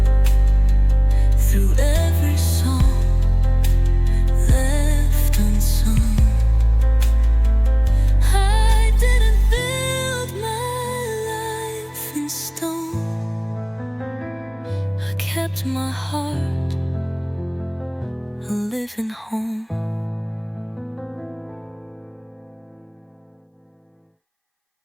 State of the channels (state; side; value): identical; both; correlation 1.00